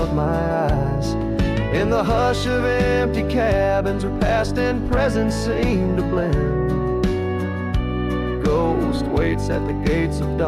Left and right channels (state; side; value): identical; both; correlation 1.00